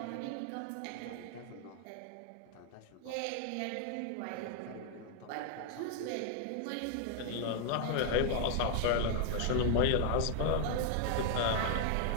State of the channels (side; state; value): both; different; correlation 0.00